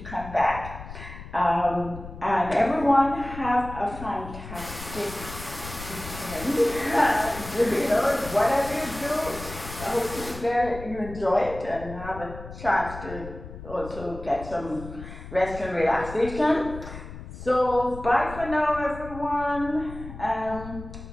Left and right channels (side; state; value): left; noise; rumble, 12 dB below the sound